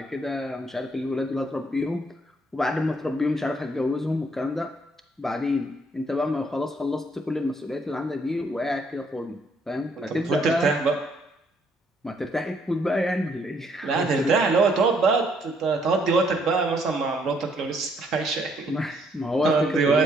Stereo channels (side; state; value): both; normal; correlation 0.69